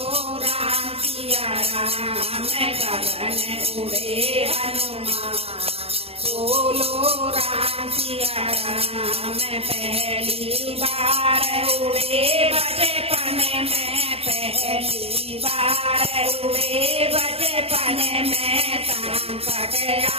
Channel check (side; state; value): left; late; 0.29 ms